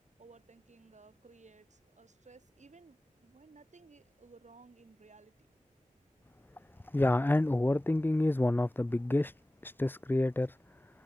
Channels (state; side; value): normal; both; correlation 0.97